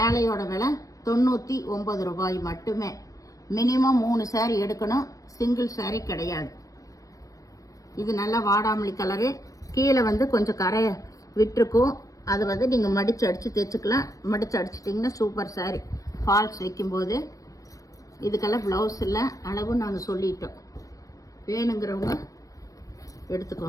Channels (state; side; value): late; right; 0.16 ms